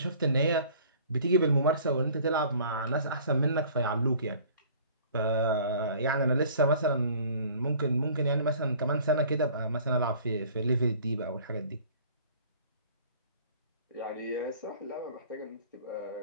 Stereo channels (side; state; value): both; inverted; correlation -0.50